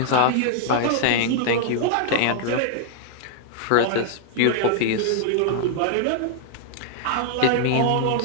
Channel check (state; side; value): different; both; correlation -0.01